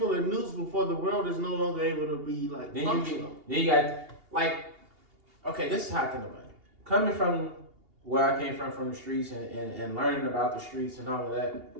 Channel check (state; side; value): late; left; 2.8 ms